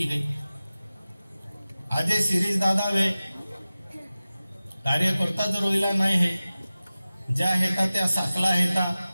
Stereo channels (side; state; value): both; inverted; correlation -0.96